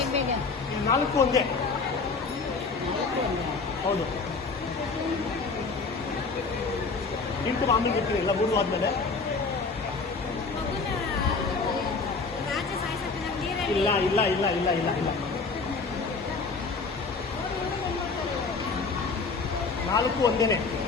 4 ಒಂದೇ. ಹೌದು. ಇಂಟು ಆಮೇಲೆ ಇರ್ತೀನಿ ಇಲ್ಲ 3 ಆದ್ಮೇಲೆ. ಇಲ್ಲ ಇಲ್ಲ ಇಲ್ಲ ಇಲ್ಲ ಇಲ್ಲ ಇಲ್ಲ 4 ಒಂದೇನೆ.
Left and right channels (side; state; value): right; quieter; 4.4 dB